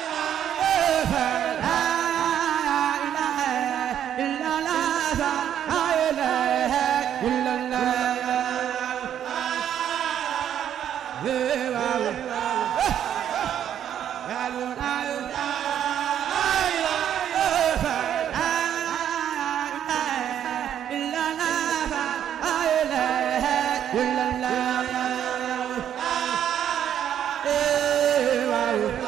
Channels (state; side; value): quieter; left; 9.9 dB